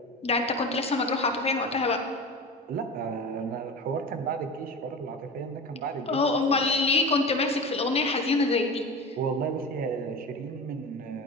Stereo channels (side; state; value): both; normal; correlation 0.30